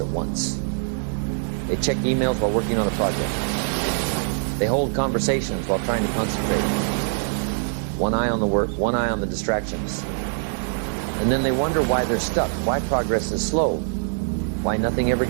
once. They check emails while working on a project. They hold conversations while trying to concentrate. One eye on the work, one eye on the distractions. And then they wonder why they're stuck, why progress is slow, why nothing ever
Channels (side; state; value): left; silent; 63 dB below the other